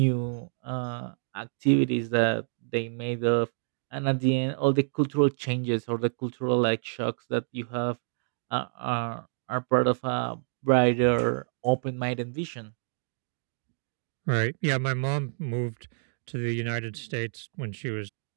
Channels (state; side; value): silent; left; digital silence